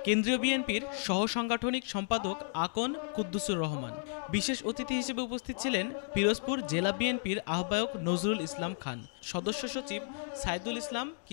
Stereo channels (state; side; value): silent; right; digital silence